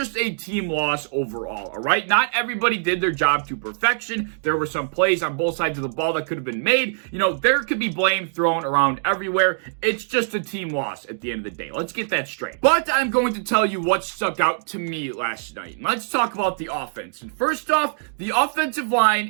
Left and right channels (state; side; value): silent; left; digital silence